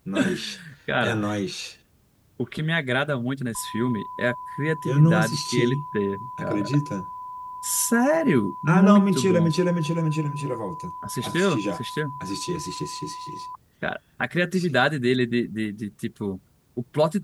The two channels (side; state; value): both; identical; correlation 1.00